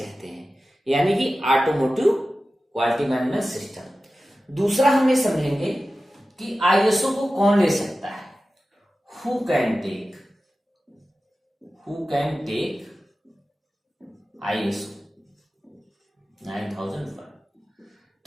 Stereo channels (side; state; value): both; normal; correlation 0.95